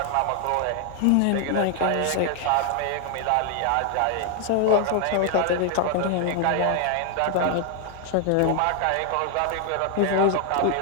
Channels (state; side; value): different; both; correlation 0.00